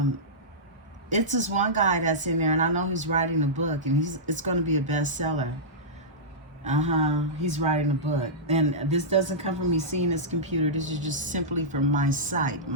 It's this one guy that's in there, and I know he's writing a book, and it's going to be a bestseller. He's writing a book. And this doesn't come from me seeing his computer. This is just simply from my sight,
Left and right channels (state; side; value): normal; both; correlation -0.14